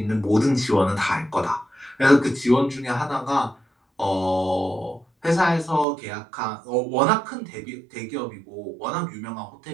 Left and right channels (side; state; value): left; drops out; at 5.9 s